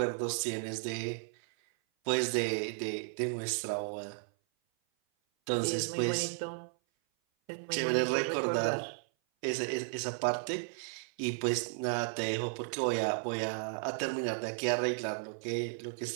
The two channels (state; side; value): silent; left; 55 dB below the other